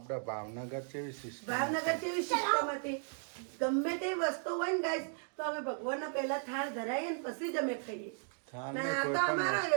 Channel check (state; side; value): silent; left; 54 dB below the other